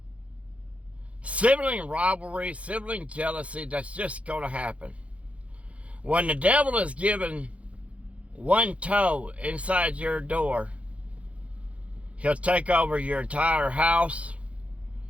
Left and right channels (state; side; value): late; left; 0.064 ms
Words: sibling rivalry, sibling jealousy, that's just going to happen. When the devil is given one toe inside your door, he'll take over your entire house,